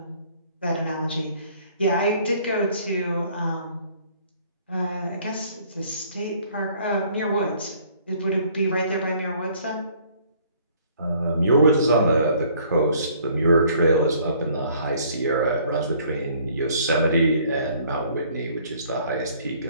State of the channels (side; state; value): both; inverted; correlation -0.59